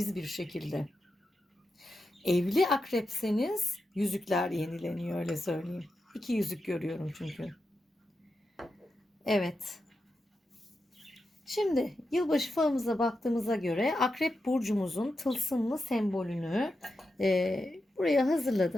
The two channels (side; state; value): both; normal; correlation 0.88